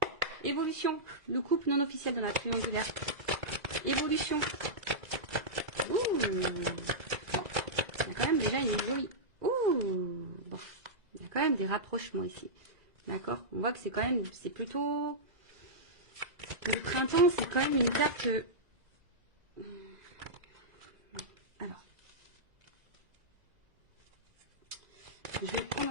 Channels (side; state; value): left; late; 2.0 ms